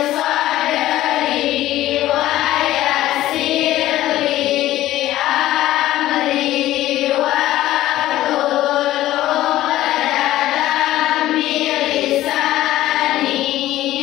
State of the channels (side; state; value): right; quieter; 14.7 dB